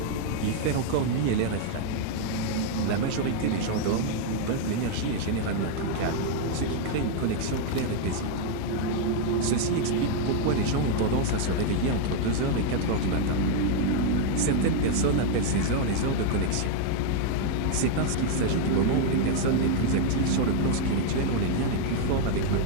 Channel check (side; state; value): both; different; correlation 0.00